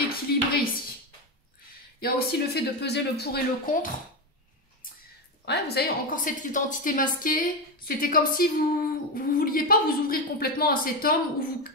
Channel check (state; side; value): normal; both; correlation 0.13